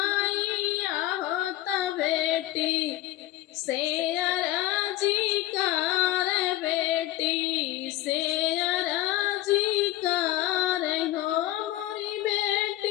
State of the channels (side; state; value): right; quieter; 15.1 dB